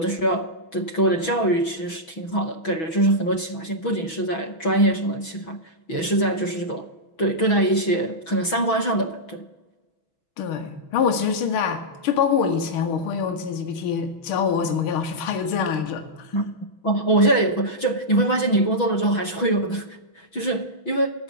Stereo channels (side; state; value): right; late; 6.1 ms